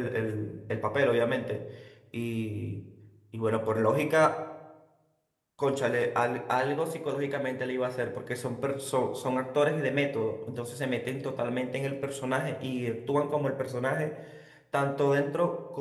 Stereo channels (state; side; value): identical; both; correlation 1.00